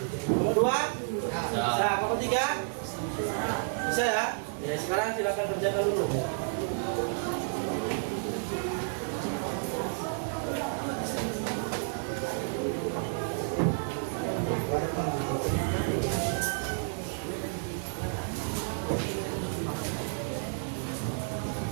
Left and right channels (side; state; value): left; silent; 57 dB below the other